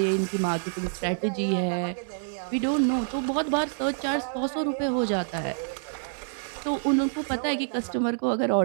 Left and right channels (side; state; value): left; silent; digital silence